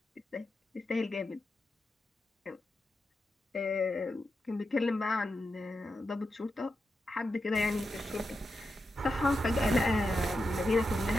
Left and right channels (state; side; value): normal; both; correlation 0.88